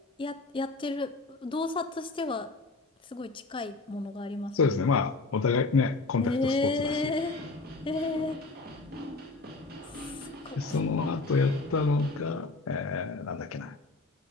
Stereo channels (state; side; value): quieter; right; 3.5 dB